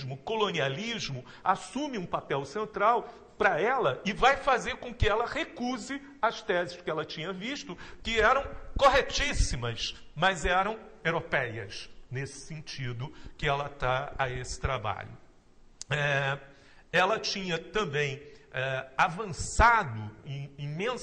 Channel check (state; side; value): identical; both; correlation 1.00